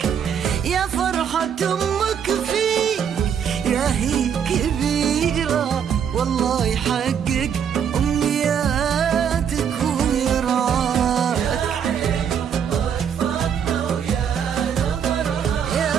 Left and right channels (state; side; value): quieter; left; 8.0 dB